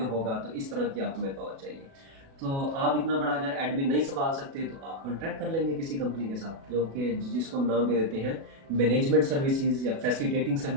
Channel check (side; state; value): left; late; 36 ms